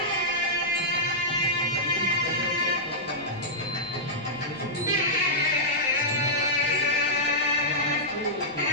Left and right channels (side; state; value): right; noise; rumble, 25 dB below the sound